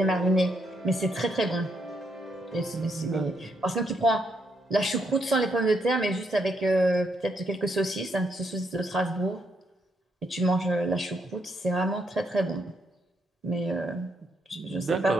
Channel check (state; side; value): normal; both; correlation 0.77